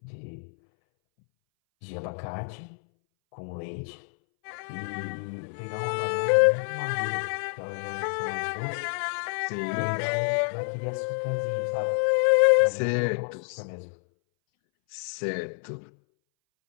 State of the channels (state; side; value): silent; right; 60 dB below the other